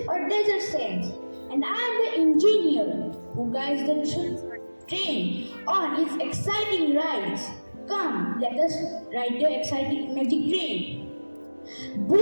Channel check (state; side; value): inverted; both; correlation -1.00